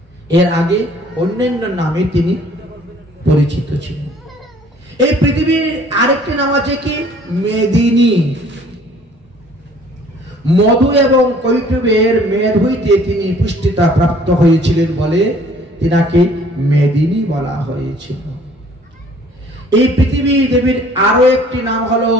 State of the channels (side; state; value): both; normal; correlation 0.55